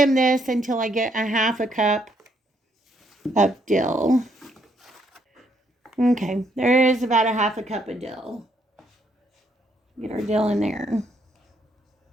this until I get a half a cup of dill. Okay, there is about a half a cup of dill. Get our dill in there.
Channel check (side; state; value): both; normal; correlation 0.72